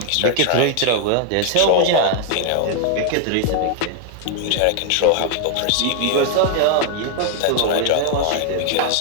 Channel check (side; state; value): both; different; correlation 0.00